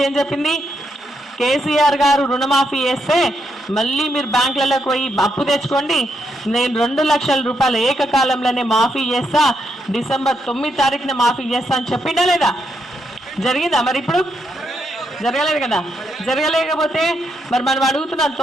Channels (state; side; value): normal; both; correlation 0.79